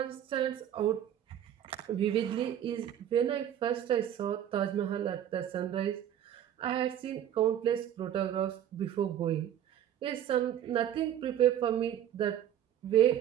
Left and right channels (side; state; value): left; quieter; 10.5 dB